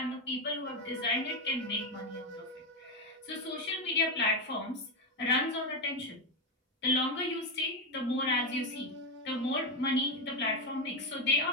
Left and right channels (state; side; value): normal; both; correlation 0.08